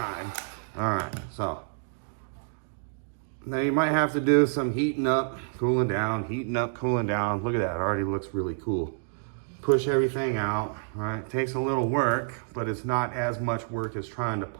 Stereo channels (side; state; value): left; silent; digital silence